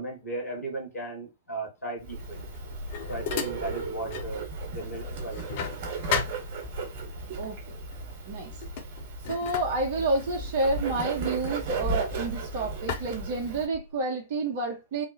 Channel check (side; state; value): both; inverted; correlation -0.33